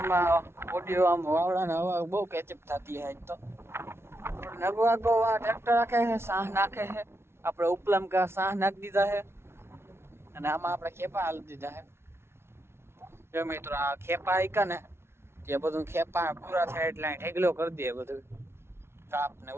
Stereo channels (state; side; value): late; left; 0.12 ms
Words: ઓડિયો આમ વાવડાને હવા બહુ કેચઅપ થતી છે. આજ તો નગવાગો ટ્રેક્ટર રાખે છે, સાહ નાખે છે. આપણે ઉપલામ કા સાહ નાખી દીધા છે અને આમાં આપણે ખેપા હાલી દીધા છે. જો મિત્રો આ ખેપા આઈકા ને જે બધું ખેપા પૂરા થાય એટલે ઢેગલો કરી દે બધું કાપ ને